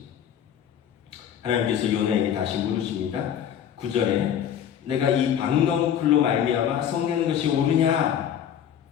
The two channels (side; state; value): right; quieter; 9.3 dB